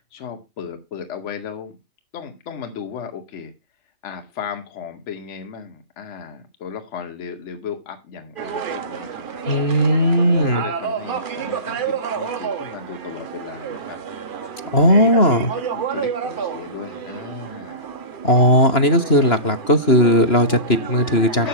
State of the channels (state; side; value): late; right; 2.9 ms